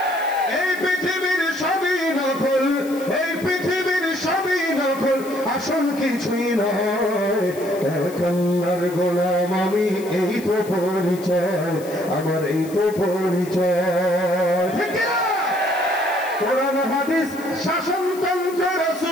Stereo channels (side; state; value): left; noise; hiss, 18 dB below the sound